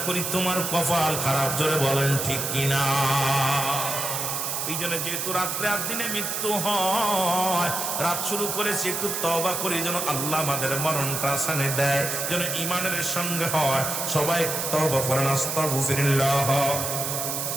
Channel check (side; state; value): right; noise; hiss, 2 dB below the sound